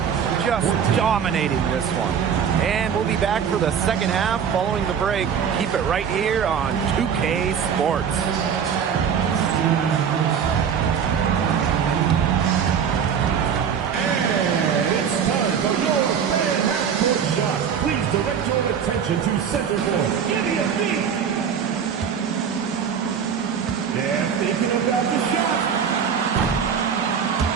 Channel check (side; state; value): left; quieter; 7.5 dB